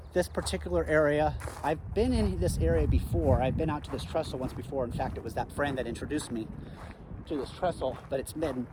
This particular area, I've been in this area before. I've been out to this trestle once before. In fact, it was that friend that introduced me to this trestle, but it's been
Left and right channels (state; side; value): identical; both; correlation 1.00